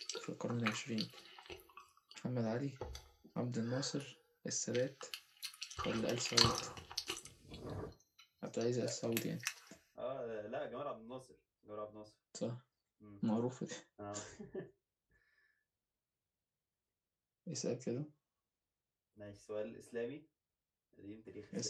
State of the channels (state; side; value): identical; both; correlation 1.00